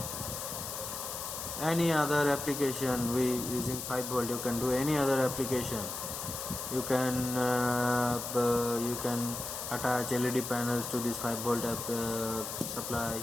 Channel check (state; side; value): noise; left; hiss, 6 dB below the sound